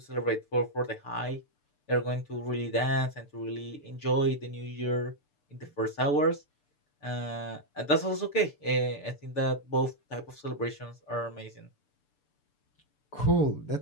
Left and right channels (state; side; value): late; right; 6.8 ms